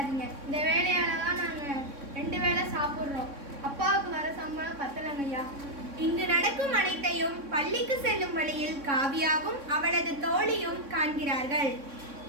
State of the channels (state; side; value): late; left; 3.6 ms